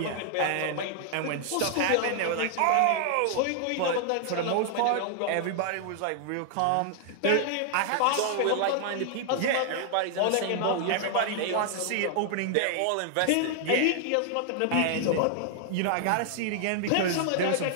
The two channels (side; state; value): both; different; correlation 0.00